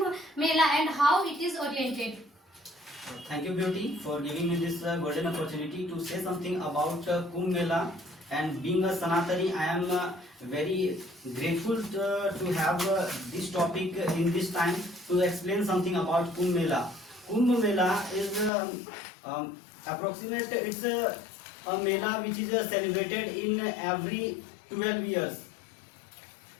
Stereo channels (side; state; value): right; drops out; at 18.5 s